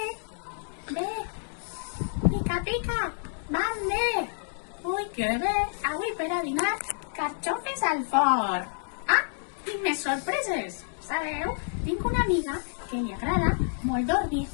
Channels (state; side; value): silent; right; digital silence